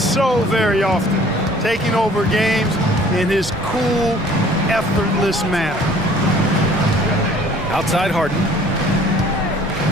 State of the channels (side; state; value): both; normal; correlation 0.54